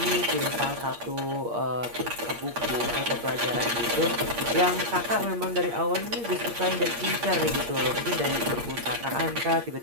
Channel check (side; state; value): left; late; 8.6 ms